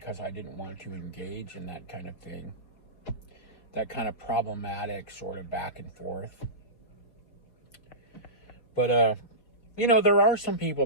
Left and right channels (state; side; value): late; right; 4.5 ms